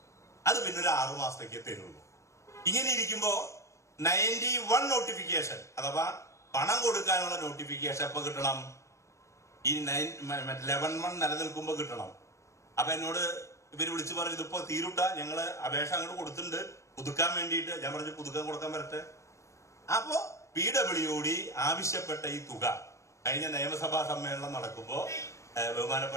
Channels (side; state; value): right; late; 0.14 ms